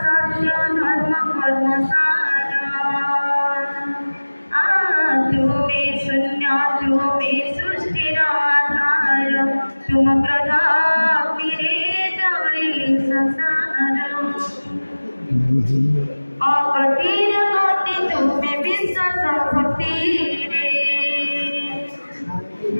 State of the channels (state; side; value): inverted; both; correlation -1.00